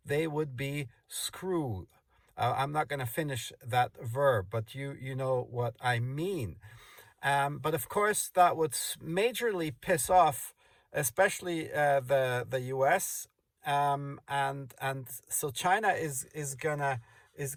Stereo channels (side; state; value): both; identical; correlation 1.00